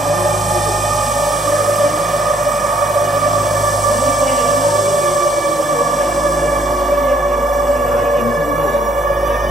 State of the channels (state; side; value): normal; both; correlation 0.66